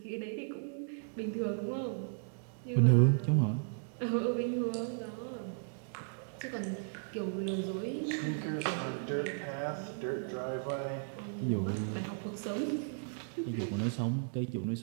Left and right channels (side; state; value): left; silent; digital silence